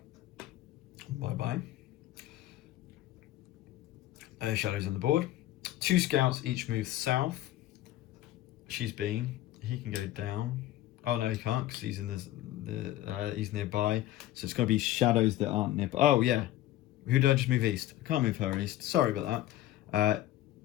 Bye-bye. Shadows on the board. 2 scouts each move south. He can go down. Oh no, he can't because he's in he's nearby. So it's got to be shadows that aren't nearby. Oh yeah, who did I just move east? I can't move her east. Sorry about that.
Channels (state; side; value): quieter; right; 14.4 dB